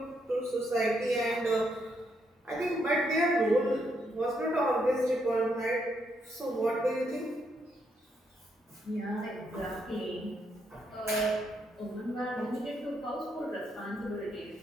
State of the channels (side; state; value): both; normal; correlation 0.77